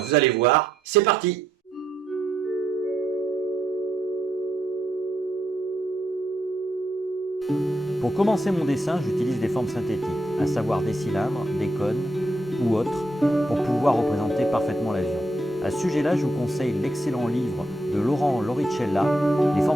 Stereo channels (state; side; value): normal; both; correlation 0.78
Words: allez voir, c'est parti! Pour commencer mon dessin, j'utilise des formes synthétiques, à savoir des cylindres, des cônes ou autres, pour pouvoir représenter parfaitement l'avion. À ce sujet-là, je vous conseille l'excellent livre de Laurent Loricella, Les